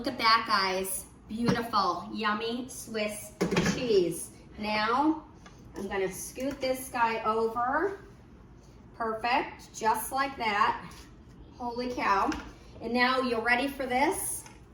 at that, guys. Beautiful, yummy Swiss cheese. Now, I'm gonna scoot this guy over. Perfect, just like that. Holy cow. And now you're ready for this?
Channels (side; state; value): both; identical; correlation 1.00